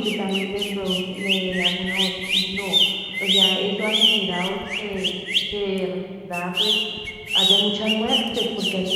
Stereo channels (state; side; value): identical; both; correlation 1.00